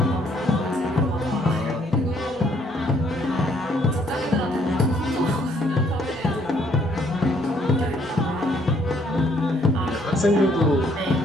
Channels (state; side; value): normal; both; correlation 0.66